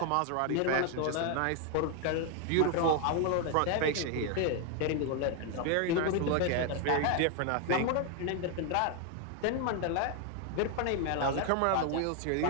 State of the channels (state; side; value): different; both; correlation 0.01